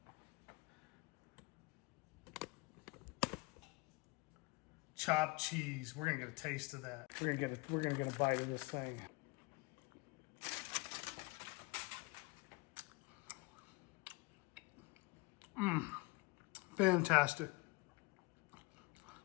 Chopped cheese. We're gonna get a taste of that. We're gonna get a bite of this thing. Fantastic.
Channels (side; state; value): right; quieter; 26.0 dB